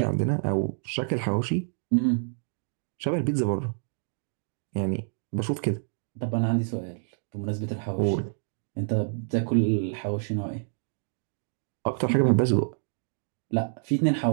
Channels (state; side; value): silent; left; digital silence